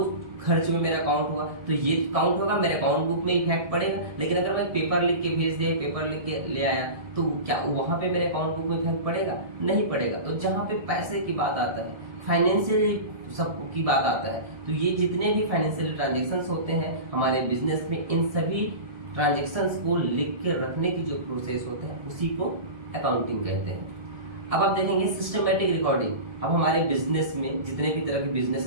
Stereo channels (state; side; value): late; left; 1.7 ms